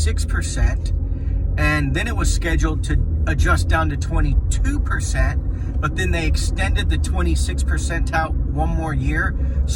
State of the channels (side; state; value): both; identical; correlation 1.00